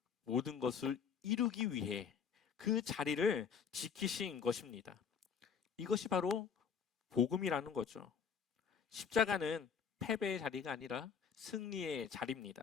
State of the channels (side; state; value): right; quieter; 6.8 dB